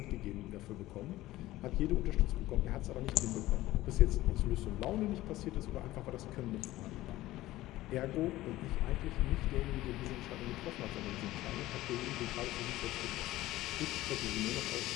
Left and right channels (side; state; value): right; quieter; 16.6 dB